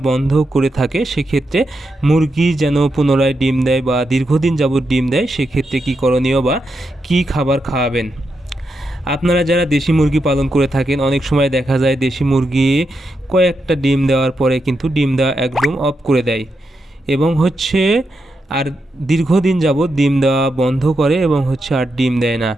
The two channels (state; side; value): normal; both; correlation 0.85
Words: বন্ধ করে থাকে, সেক্ষেত্রে মুরগি যেন পুনরায় ডিম দেয় বা দীর্ঘদিন যাবৎ ডিম দেয়, সেক্ষেত্রে কী করণীয় বা কী খাবার খাওয়াবেন। আপনারা যারা দেশি মুরগি পালন করে থাকেন, অনেক সময় দেখা যায় দেশি মুরগি কয়েকটা ডিম দেওয়ার পরে কিন্তু ডিম দেওয়া একদম অফ করে দেয় এবং আর দীর্ঘদিন যাবৎ ডিম দেওয়া বন্ধ করে এবং আর ডিম দেয় না।